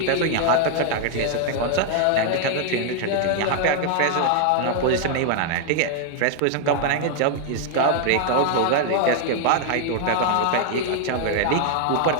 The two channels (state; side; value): different; both; correlation 0.00